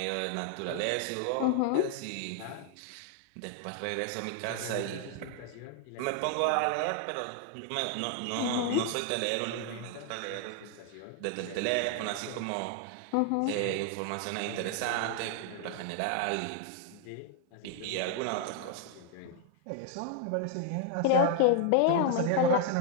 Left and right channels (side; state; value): both; different; correlation 0.00